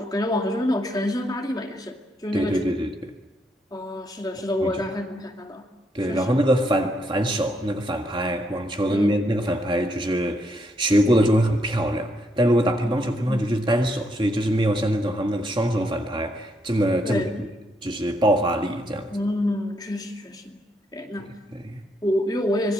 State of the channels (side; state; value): both; normal; correlation 0.75